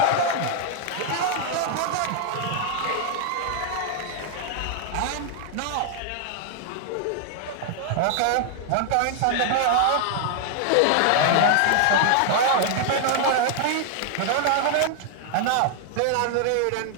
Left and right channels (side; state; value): both; different; correlation 0.00